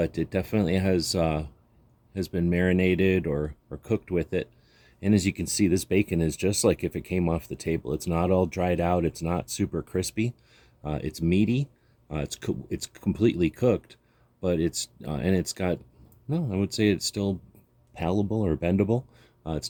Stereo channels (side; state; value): both; identical; correlation 1.00